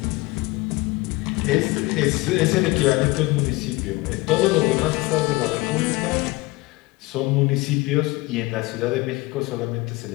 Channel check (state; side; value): quieter; right; 22.0 dB